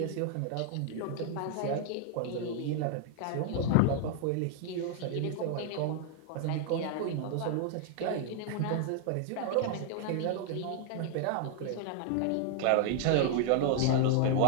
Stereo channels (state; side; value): different; both; correlation 0.00